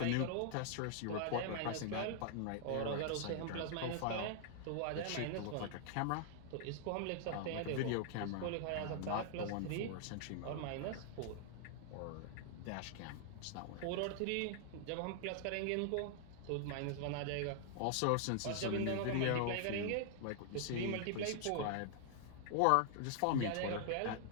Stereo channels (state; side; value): different; both; correlation 0.00